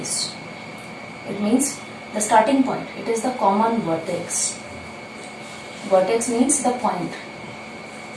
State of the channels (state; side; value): identical; both; correlation 1.00